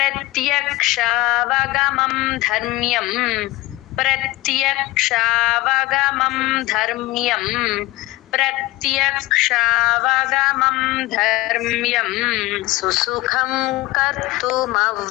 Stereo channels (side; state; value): right; quieter; 19.2 dB